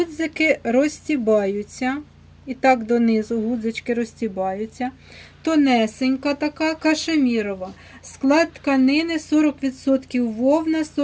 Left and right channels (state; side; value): identical; both; correlation 1.00